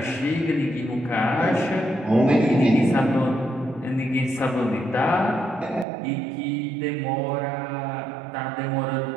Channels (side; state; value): left; drops out; at 5.9 s